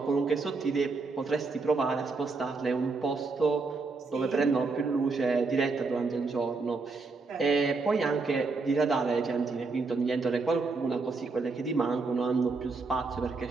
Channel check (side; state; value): left; quieter; 4.0 dB